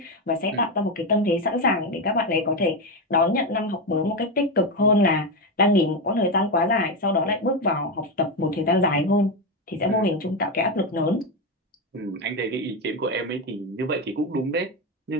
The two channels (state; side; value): normal; both; correlation 0.12